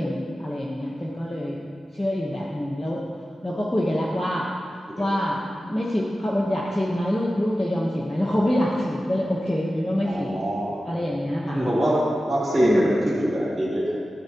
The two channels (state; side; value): normal; both; correlation 0.94